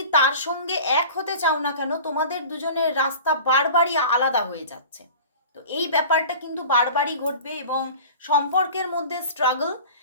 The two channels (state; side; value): inverted; both; correlation -0.39